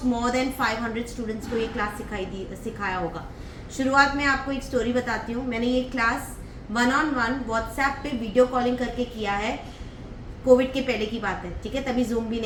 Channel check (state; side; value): identical; both; correlation 1.00